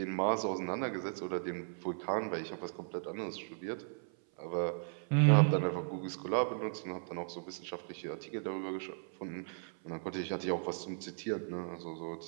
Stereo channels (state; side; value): silent; left; 53 dB below the other